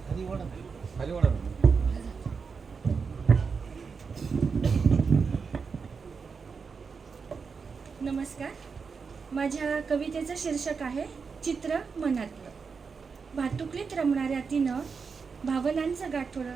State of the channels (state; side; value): quieter; left; 5.4 dB